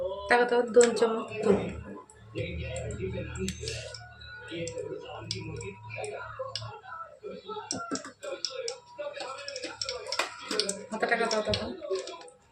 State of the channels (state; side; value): identical; both; correlation 1.00